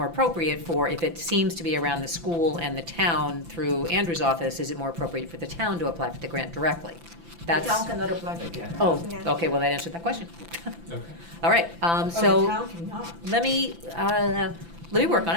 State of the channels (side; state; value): left; late; 5.9 ms